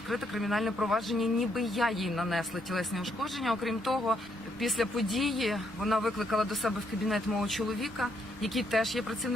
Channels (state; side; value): noise; right; rumble, 27 dB below the sound